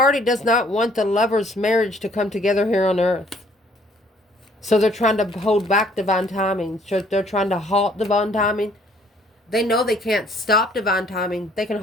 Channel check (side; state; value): both; normal; correlation 0.61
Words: does not want the lover's marriage to come together here on earth. So they're trying to hold back divine timing. So they're trying to halt divine timing. They know they can't stop divine timing. They can